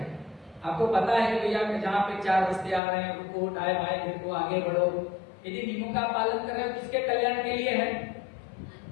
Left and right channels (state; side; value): drops out; right; at 2.8 s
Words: आपको पता है कि भैया जहाँ पे 4 रस्ते आ रहे हैं, रुको, दाएं बाएं देखो, आगे बढ़ो। यदि नियमों का पालन कर रहे हो, किसके कल्याण के लिए है,